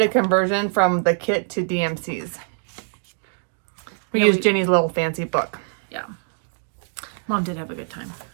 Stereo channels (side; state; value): left; silent; digital silence